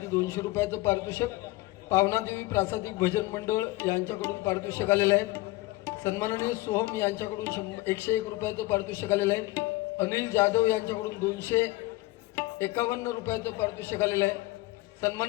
200 रुपयाचं पारितोषिक, पावनादेवी प्रासादिक भजन मंडळ यांच्याकडून पारितोषिक आलेलं आहे. सन्माननीय सोहम यांच्याकडून 101 रुपयाचं पारितोषिक आलेलं आहे. अनिल जाधव यांच्याकडून 251 रुपयाचं पारितोषिक आलेलं आहे.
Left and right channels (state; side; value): quieter; right; 20.0 dB